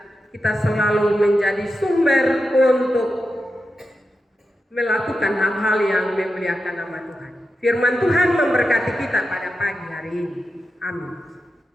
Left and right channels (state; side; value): normal; both; correlation 0.90